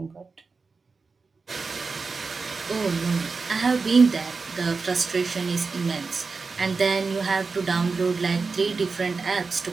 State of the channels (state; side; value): quieter; left; 4.4 dB